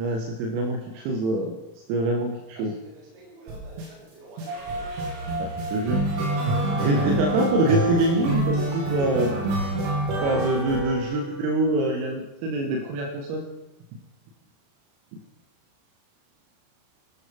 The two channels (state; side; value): late; left; 36 ms